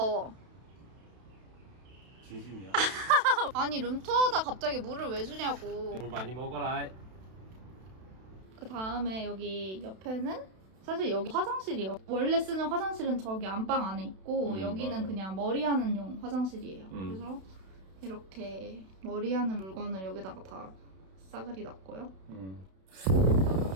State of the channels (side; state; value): left; late; 32 ms